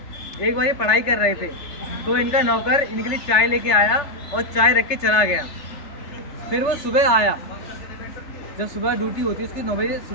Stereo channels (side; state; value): right; late; 3.4 ms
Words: एक बार ये पढ़ाई कर रहे थे तो इनका नौकर इनके लिए चाय लेके आया और चाय रख के चला गया। फिर वो सुबह आया, जब सुबह ड्यूटी होती है उसकी 9 बजे